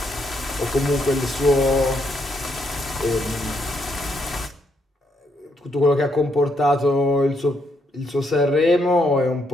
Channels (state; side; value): normal; both; correlation 0.76